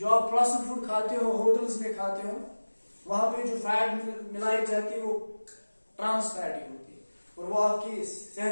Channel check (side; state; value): both; inverted; correlation -1.00